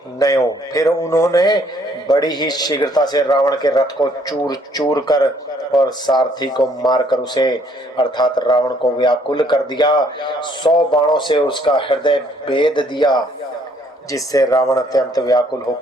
नयो। फिर उन्होंने बड़ी ही शीघ्रता से रावण के रथ को चूर चूर कर और सारथी को मारकर उसे अर्थात रावण को व्याकुल कर दिया। 100 बाणों से उसका हृदय भेद दिया, जिससे रावण अत्यंत व्याकुल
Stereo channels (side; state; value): both; normal; correlation 0.64